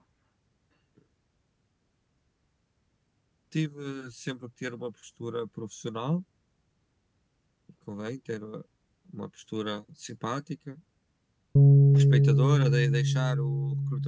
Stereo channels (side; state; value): both; identical; correlation 1.00